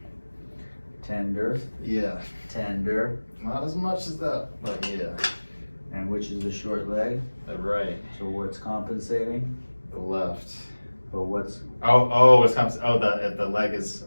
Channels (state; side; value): inverted; both; correlation -1.00